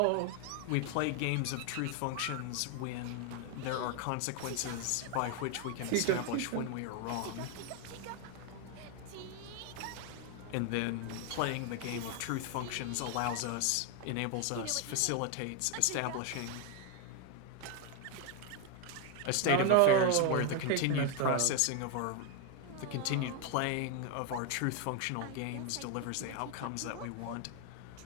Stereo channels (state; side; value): different; both; correlation 0.01